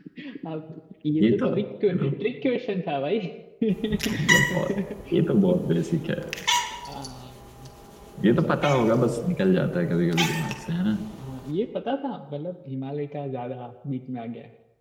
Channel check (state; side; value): identical; both; correlation 1.00